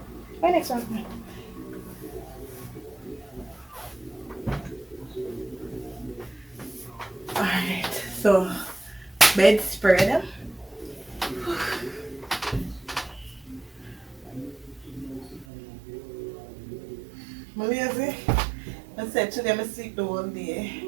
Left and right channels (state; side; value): drops out; left; at 15.5 s